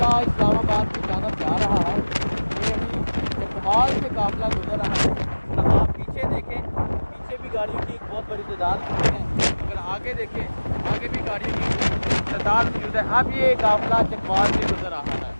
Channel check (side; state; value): both; inverted; correlation -1.00